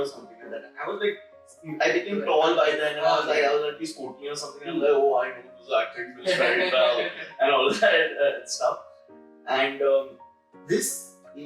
something like that. And I was like, I became tall by then, and I was at least 14 or something. And I'm like, oh, I know this acting this very well, and all that stuff. And this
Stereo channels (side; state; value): both; identical; correlation 1.00